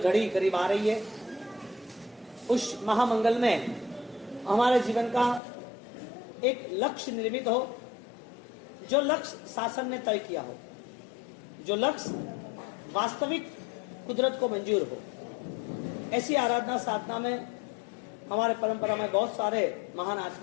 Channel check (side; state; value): right; drops out; at 5.4 s